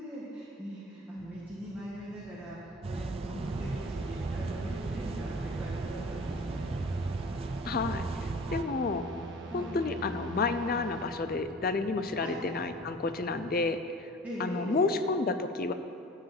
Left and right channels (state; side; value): normal; both; correlation 0.42